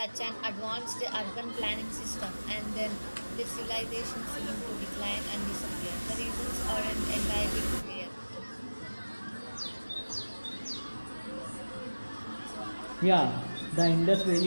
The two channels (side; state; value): both; inverted; correlation -1.00